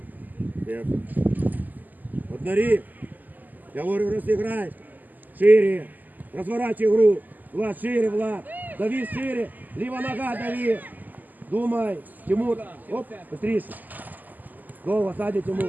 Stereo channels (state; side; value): late; left; 0.084 ms